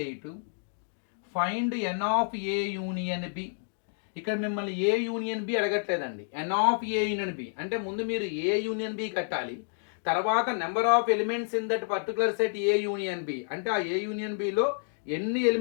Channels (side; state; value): right; silent; digital silence